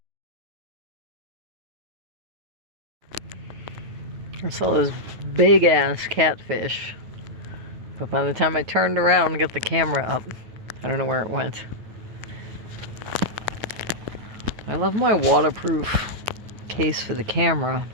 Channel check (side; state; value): left; late; 9.3 ms